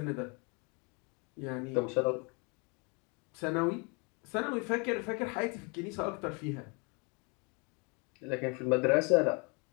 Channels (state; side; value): quieter; right; 32.4 dB